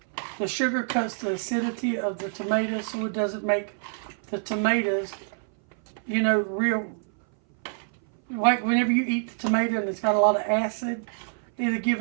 The sugar cuts the acidity of the tomatoes, so it doesn't make the tomatoes, you know, real, like whenever you eat the tomato and it's got a lot of acid, it'll give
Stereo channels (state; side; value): silent; left; 59 dB below the other